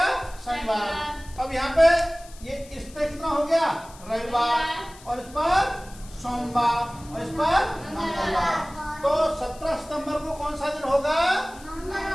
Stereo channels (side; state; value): left; noise; hiss, 21 dB below the sound